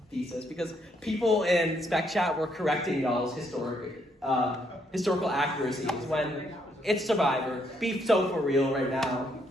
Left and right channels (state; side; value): normal; both; correlation 0.73